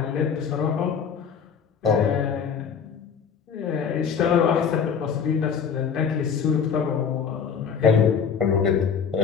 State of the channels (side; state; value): right; quieter; 6.8 dB